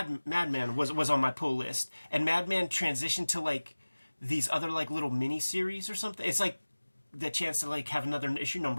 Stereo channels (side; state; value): both; inverted; correlation -1.00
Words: was on my pull list, and Madman transitioned to like these other like little mini-series or something. It's like the chance to like have another issue